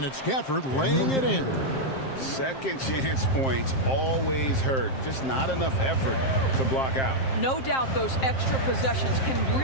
it's Gafford laying it in. Second chance points always hurt. Just not enough effort to block out. No doubt those extra possessions can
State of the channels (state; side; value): late; right; 7.6 ms